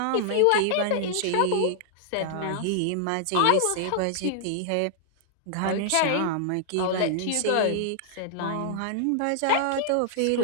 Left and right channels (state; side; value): different; both; correlation -0.01